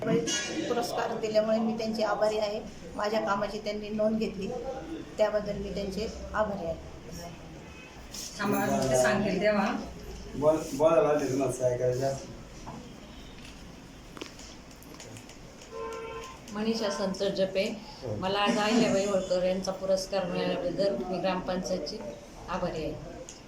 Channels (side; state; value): both; identical; correlation 1.00